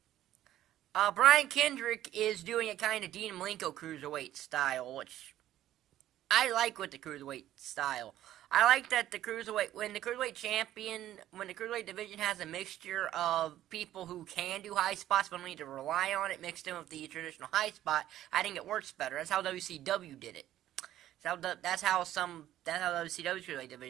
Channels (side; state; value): left; quieter; 13.0 dB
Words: Brian Kendrick is doing a kind of Dean Malenko Cruiserweight style, which I like with the Cruiserweight style. I like that the Cruiserweight when the Cruiserweight division has a mixture of people who can do high spots but don't need to rely on it, mixed in with the traditional high spot, I think it works better. That's how WCW did it. That's how WCW's Cruiserweight